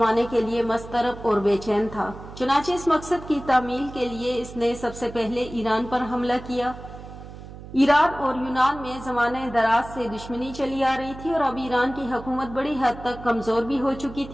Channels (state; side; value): noise; right; hum, 14 dB below the sound